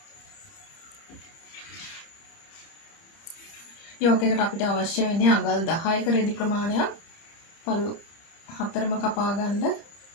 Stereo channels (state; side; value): late; right; 30 ms